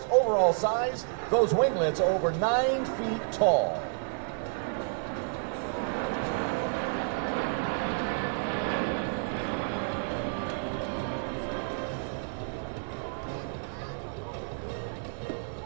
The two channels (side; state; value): left; silent; digital silence